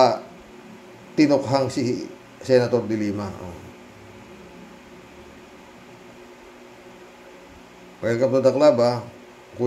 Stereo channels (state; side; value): identical; both; correlation 1.00